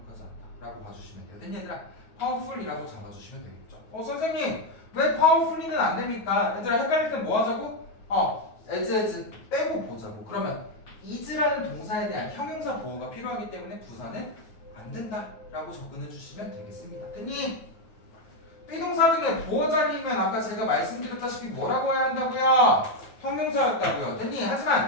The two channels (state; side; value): late; right; 9.4 ms